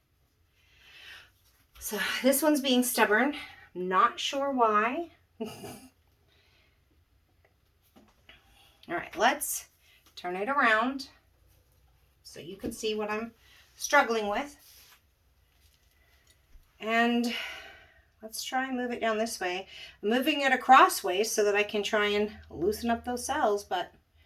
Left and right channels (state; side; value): identical; both; correlation 1.00